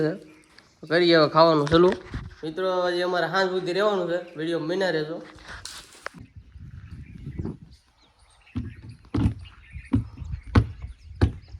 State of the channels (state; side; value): identical; both; correlation 1.00